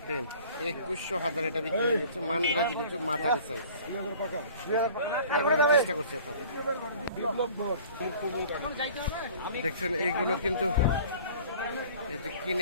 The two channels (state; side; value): inverted; both; correlation -0.48